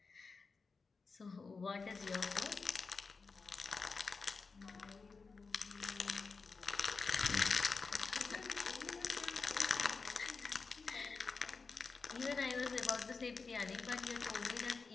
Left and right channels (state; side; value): quieter; right; 4.5 dB